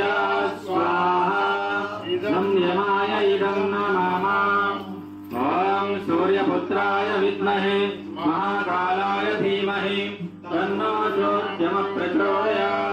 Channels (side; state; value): both; identical; correlation 1.00